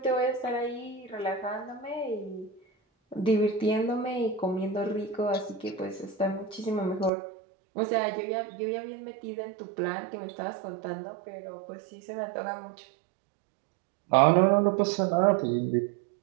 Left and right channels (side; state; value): left; drops out; at 7.1 s